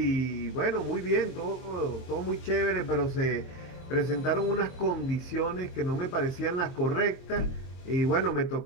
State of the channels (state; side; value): late; right; 23 ms